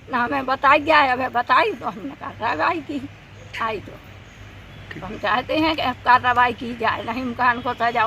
ना। हमें बताई गया है, हमें बताई तो हमने कार्रवाई की। आई तो हम चाहते हैं कि कार्रवाई की जाए, नहीम खान को सजा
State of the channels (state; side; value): identical; both; correlation 1.00